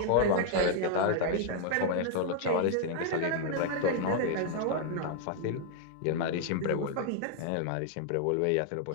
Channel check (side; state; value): both; different; correlation 0.00